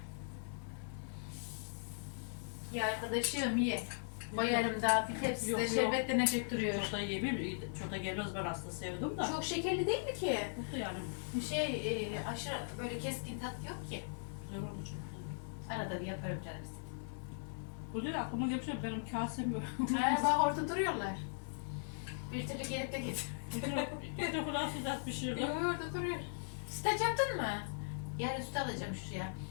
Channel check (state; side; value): silent; right; digital silence